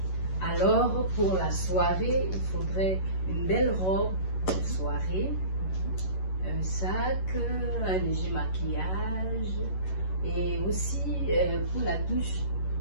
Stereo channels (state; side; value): late; right; 11 ms